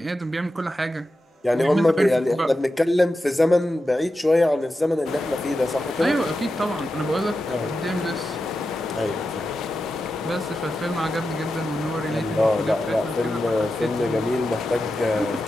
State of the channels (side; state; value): both; normal; correlation 0.90